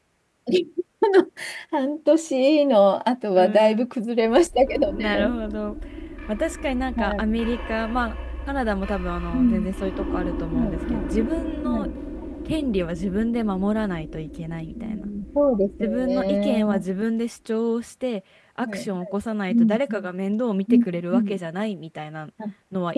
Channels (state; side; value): identical; both; correlation 1.00